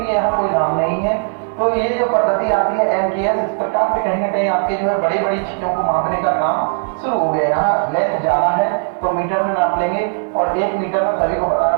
यहाँ कोई नाम नहीं है। तो ये जो पद्धति आती है MKS, इस प्रकार से कहीं ना कहीं आपके जो है बड़ी बड़ी चीजों को मापने का काम शुरू हो गया। यहाँ लेंथ ज्यादा है तो मीटर में नाप लेंगे, और 1 मीटर में सभी को पता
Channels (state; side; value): silent; left; 55 dB below the other